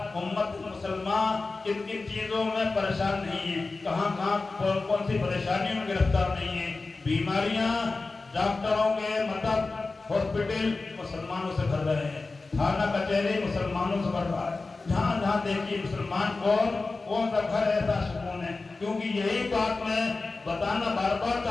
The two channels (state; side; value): quieter; right; 3.7 dB